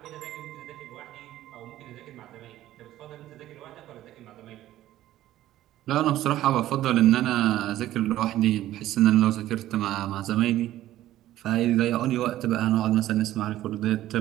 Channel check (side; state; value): left; quieter; 14.0 dB